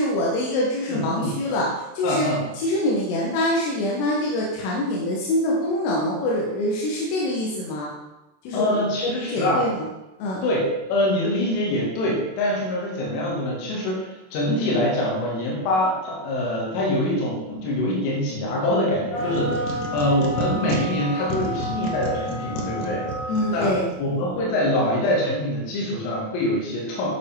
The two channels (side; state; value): right; late; 27 ms